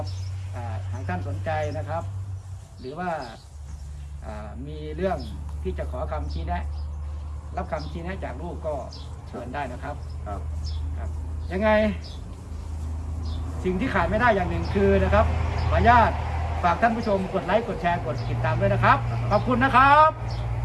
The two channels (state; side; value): identical; both; correlation 1.00